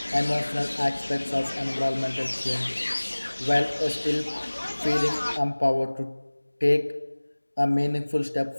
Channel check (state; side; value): inverted; both; correlation -1.00